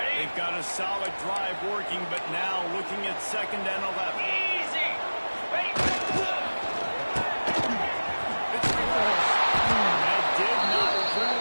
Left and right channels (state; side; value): inverted; both; correlation -1.00